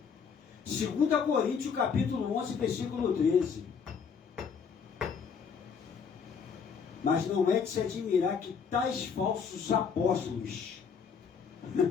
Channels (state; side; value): quieter; right; 6.3 dB